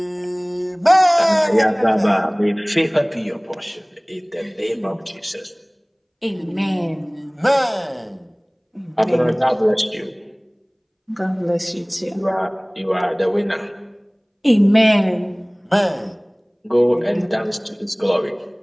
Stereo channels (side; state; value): both; identical; correlation 1.00